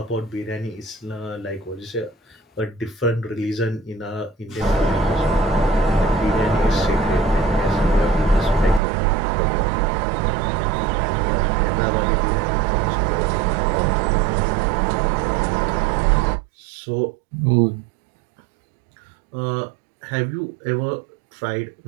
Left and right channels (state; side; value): drops out; left; at 8.8 s